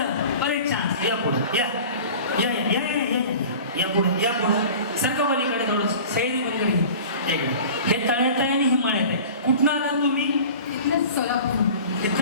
परत चान्स. या पुढं या या या या या या पुढं या पुढं सरका पलीकडे थोडं सैरी पलीकडे. हे तळ्यात आहे आणि हे मळ्यात आहे. कुठनं आला तुम्ही? इथलं सोलापूर.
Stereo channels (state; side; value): inverted; both; correlation -0.40